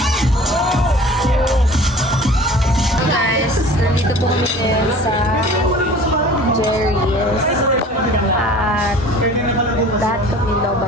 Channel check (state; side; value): normal; both; correlation 0.45